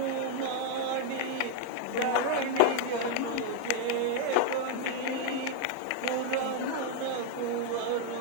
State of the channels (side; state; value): both; different; correlation 0.00